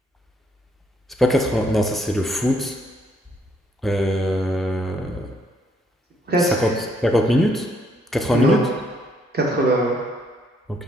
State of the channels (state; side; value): normal; both; correlation 0.70